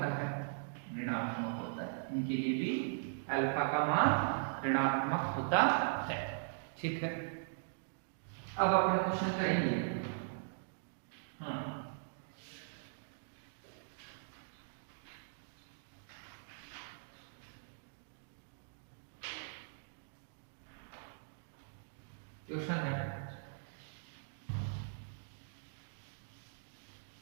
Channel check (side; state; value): left; silent; digital silence